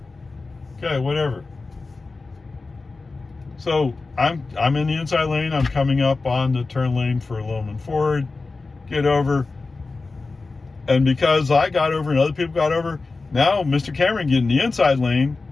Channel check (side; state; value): right; quieter; 3.8 dB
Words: Okay, whatever. So I'm in the inside lane. I'm coming up on the turn lane for Loman Ford. Get over. And because I got over and other people got over, now Mr. Cameron getting the inside lane.